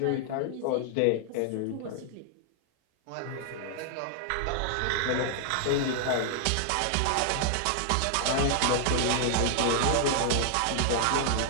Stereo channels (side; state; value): both; different; correlation -0.01